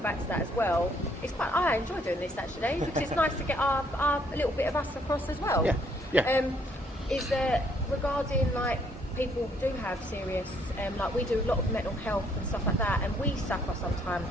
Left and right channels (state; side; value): normal; both; correlation 0.67